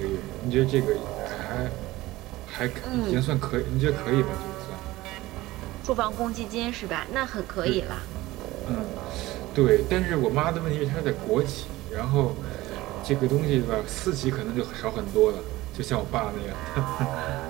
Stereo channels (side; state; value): left; quieter; 18.1 dB